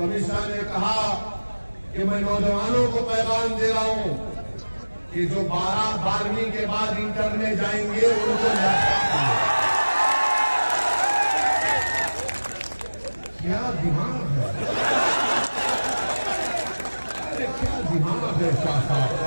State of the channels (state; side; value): inverted; both; correlation -1.00